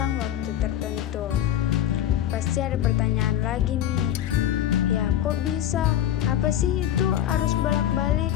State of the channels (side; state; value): right; quieter; 11.3 dB